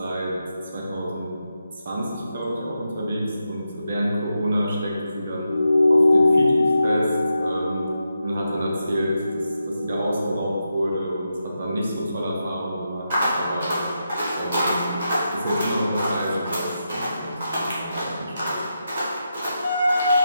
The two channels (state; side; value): inverted; both; correlation -0.86